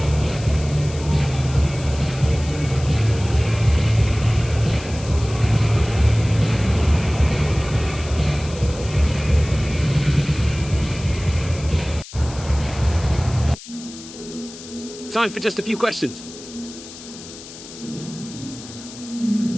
Time for just a few questions.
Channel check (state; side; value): noise; left; hiss, 16 dB below the sound